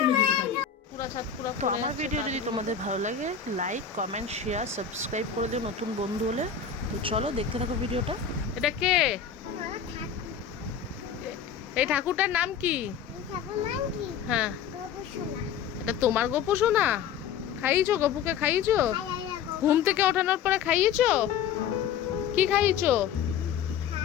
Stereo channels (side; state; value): right; quieter; 7.7 dB